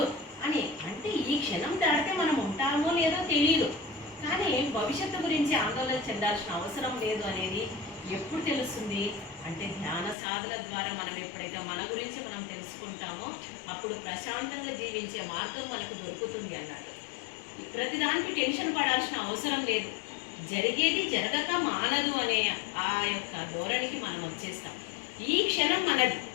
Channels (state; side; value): drops out; right; at 10.2 s